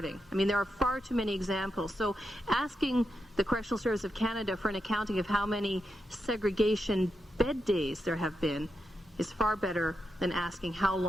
I mean, there are far too many examples. So asking the Correctional Service of Canada for an accounting of how many segregation bed days there have been is far better than asking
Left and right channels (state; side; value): normal; both; correlation 0.86